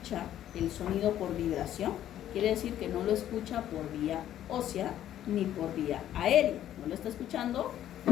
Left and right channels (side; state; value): right; quieter; 11.7 dB